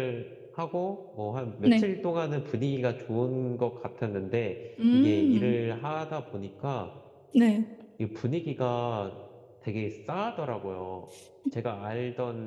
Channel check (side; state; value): both; identical; correlation 1.00